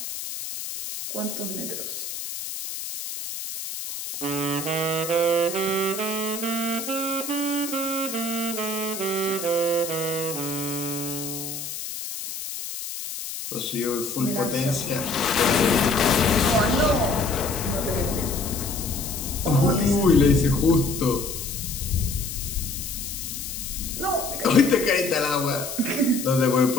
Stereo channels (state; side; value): noise; left; hiss, 7 dB below the sound